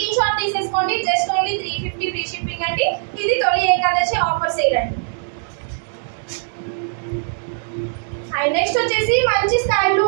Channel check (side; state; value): left; silent; 60 dB below the other